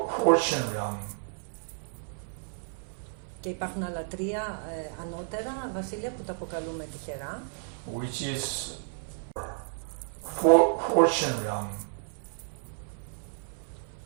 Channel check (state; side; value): silent; left; digital silence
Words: fortune realm. Και υπάρχουν άλλα τρία ανώτερα βασίλεια που τα αποκαλούμε τυχερά. Which is fortune realm.